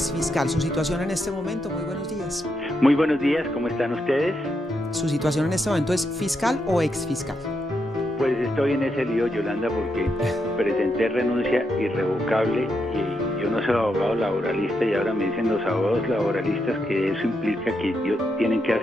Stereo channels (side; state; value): both; normal; correlation 0.82